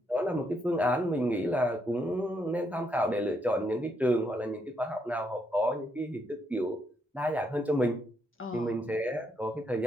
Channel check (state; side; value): normal; both; correlation 0.76